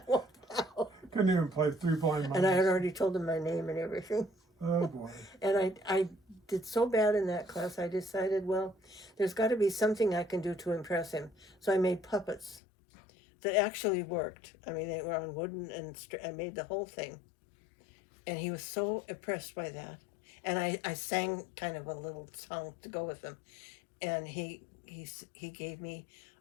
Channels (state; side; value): drops out; right; at 12.6 s